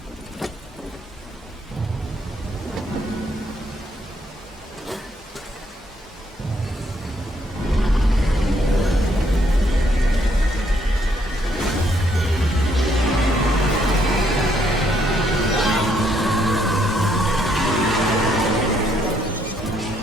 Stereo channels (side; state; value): both; normal; correlation 0.71